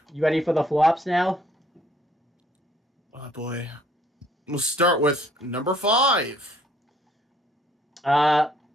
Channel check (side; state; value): both; normal; correlation 0.62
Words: You ready for the flops now? Oh boy. We'll start with number 5.